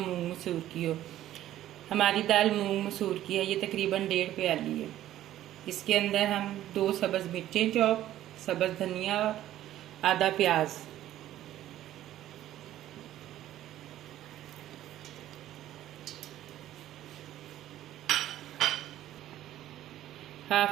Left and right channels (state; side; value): quieter; left; 13.2 dB